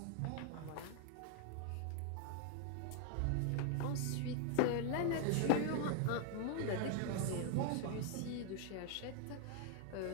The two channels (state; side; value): different; both; correlation 0.00